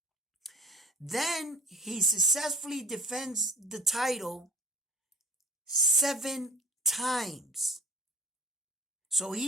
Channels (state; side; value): normal; both; correlation 0.41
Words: Then he successfully defends the title 7 times. So